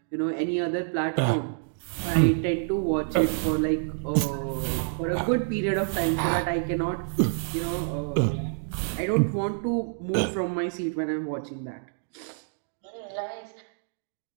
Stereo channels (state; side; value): silent; left; digital silence